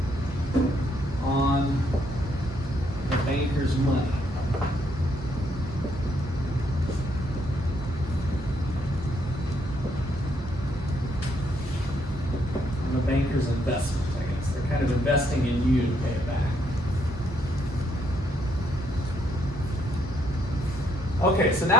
on the banker's money? On the banker's investment, I guess. They're kind of investing in you to pay it back. Okay, so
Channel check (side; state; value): both; normal; correlation 0.73